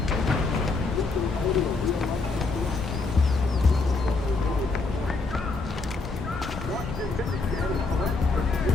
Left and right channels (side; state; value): right; quieter; 3.8 dB